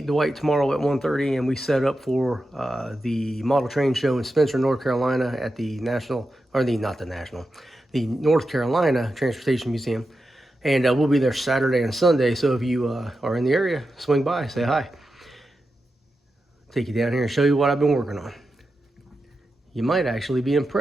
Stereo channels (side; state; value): both; normal; correlation 0.90